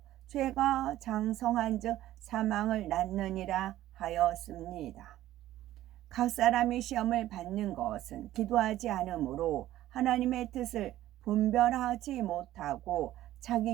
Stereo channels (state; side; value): quieter; left; 14.2 dB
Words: 죄가 장성한 즉 사망을 낳느니라 하였습니다. 각 사람이 시험을 받는 것은 기도하지 않으므로 하나님의 뜻을 분별하지 못하고